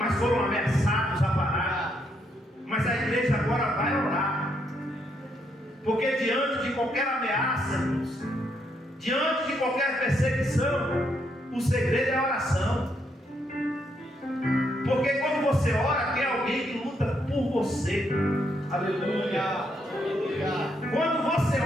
foram ameaçados a parar. Mas a igreja agora vai orar, porque diante de qualquer ameaça, irmãos, diante de qualquer perseguição, o segredo é a oração. Porque quando você ora, tem alguém que luta por você. Aleluia. Quando você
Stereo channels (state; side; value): normal; both; correlation 0.76